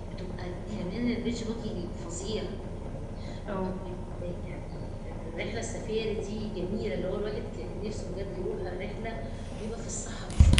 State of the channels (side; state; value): both; identical; correlation 1.00